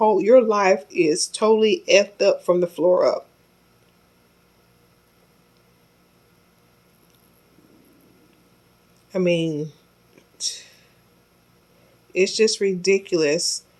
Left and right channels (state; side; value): identical; both; correlation 1.00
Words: life is totally effed up from the floor up. I mean, it's just ridiculous